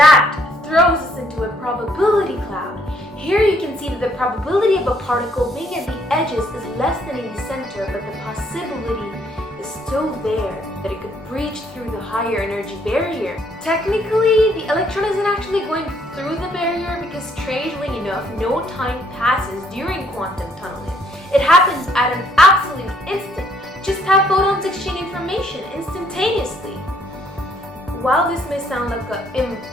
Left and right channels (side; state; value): both; normal; correlation 0.67